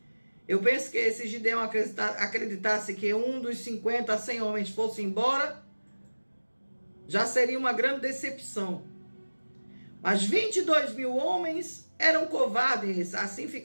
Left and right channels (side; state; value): both; inverted; correlation -1.00